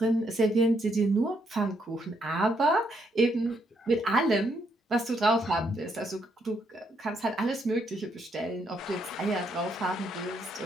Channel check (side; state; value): both; normal; correlation 0.75